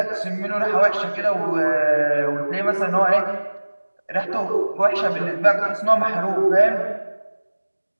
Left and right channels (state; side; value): inverted; both; correlation -1.00